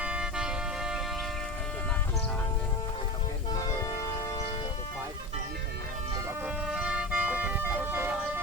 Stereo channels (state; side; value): normal; both; correlation 0.28